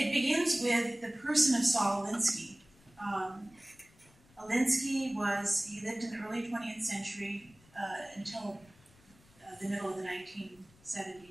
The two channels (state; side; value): noise; left; rumble, 28 dB below the sound